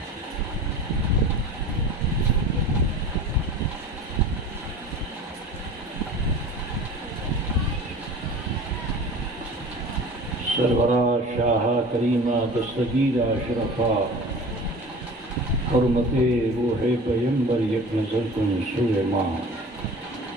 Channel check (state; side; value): normal; both; correlation 0.39